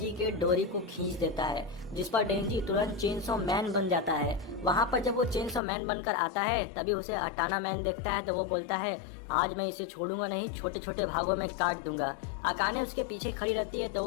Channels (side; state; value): right; drops out; at 5.6 s